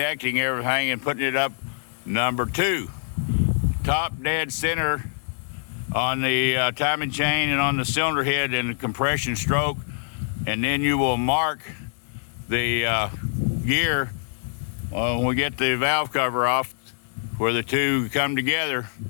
everything and putting it up number two. Top dead center on the timing chain and on the cylinder head and the compression stroke, and then you will mark the gear when we get the valve cover off where the two come together,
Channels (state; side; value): silent; right; digital silence